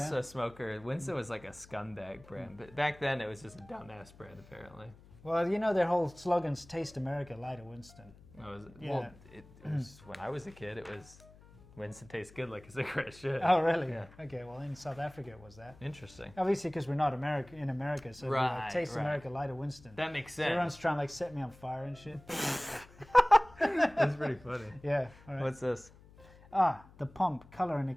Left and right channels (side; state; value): left; noise; hum, 23 dB below the sound